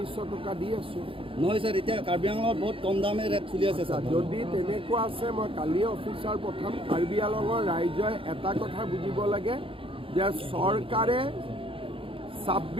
টকা দি আছোঁ। নহয় স্যাৰ, এতিয়া কাৰ্বি আংলঙত বহুত কম দামে ৰেট চলি আছে স্যাৰ। যদি তেনেকুৱা আছে মই কালিয়ে অফিচাৰ পঠাম। কাৰ্বি আংলঙৰ ৰাইজে এটা কথা বুজিব লাগে যে চৰকাৰে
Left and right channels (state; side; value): late; left; 0.26 ms